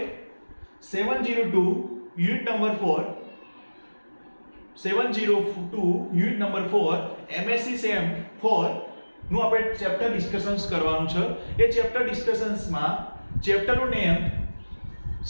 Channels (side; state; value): both; inverted; correlation -1.00